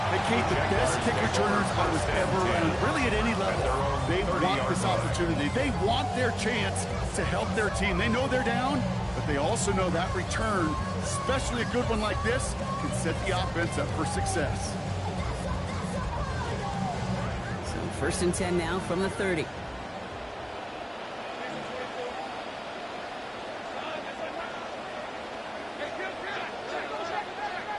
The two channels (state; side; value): identical; both; correlation 1.00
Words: Kate, the best kick returners I was ever around, really at any level. They want this opportunity. They want their chance to help their team. They know they're down, but they also know that return, especially a good one like this, can set the offense up for success. 1st and 10 now from the 30.